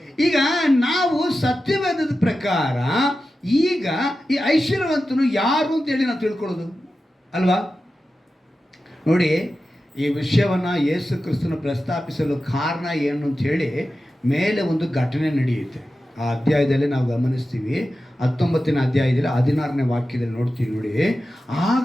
ಈಗ ನಾವು ಸತ್ಯವೇದದ ಪ್ರಕಾರ ಈಗ ಈ ಐಶ್ವರ್ಯವಂತನು ಯಾರು ಅಂತೇಳಿ ನಾವು ತಿಳ್ಕೊಳ್ಳೋದು ಅಲ್ವಾ? ನೋಡಿ, ಈ ವಿಷಯವನ್ನು ಯೇಸು ಕ್ರಿಸ್ತನ ಪ್ರಸ್ತಾಪಿಸಲು ಕಾರಣ ಏನು ಅಂತ ಹೇಳಿ ಮೇಲೆ ಒಂದು ಘಟನೆ ನಡೆಯುತ್ತೆ. ಆ ಅಧ್ಯಾಯದಲ್ಲಿ ನಾವು ಗಮನಿಸ್ತೀವಿ. 19ನೇ ಅಧ್ಯಾಯದಲ್ಲಿ 16ನೇ ವಾಕ್ಯದಲ್ಲಿ ನೋಡ್ತೀವಿ. ನೋಡಿ,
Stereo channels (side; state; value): both; normal; correlation 0.93